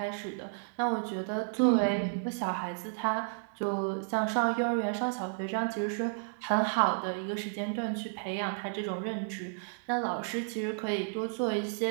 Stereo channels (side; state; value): left; silent; 56 dB below the other